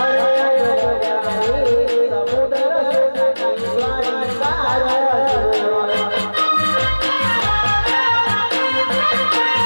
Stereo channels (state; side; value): inverted; both; correlation -1.00